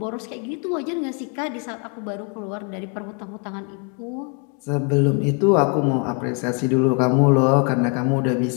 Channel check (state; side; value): quieter; right; 36.9 dB